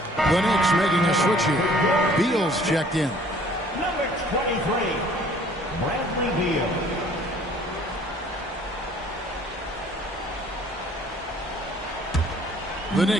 The Knicks making a switch here. Beal's checked in. Number 23, Bradley Beal. The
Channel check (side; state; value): both; normal; correlation 0.55